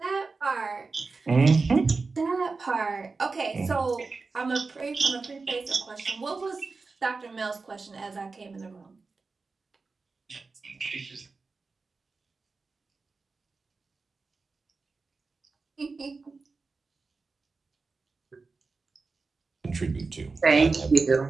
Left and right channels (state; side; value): quieter; left; 4.1 dB